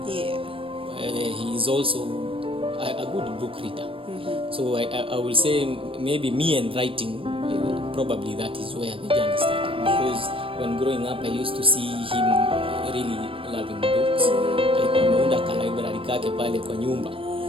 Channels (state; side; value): late; left; 0.26 ms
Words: Yeah. He is also a good book reader. So I will say maybe me and writing, probably that is where the journey started. Because when growing up, I used to see him really loving books. Alikuwa ameunda ka library kake pale kwa nyumba.